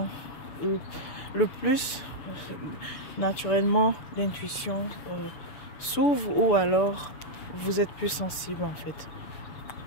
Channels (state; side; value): late; right; 7.0 ms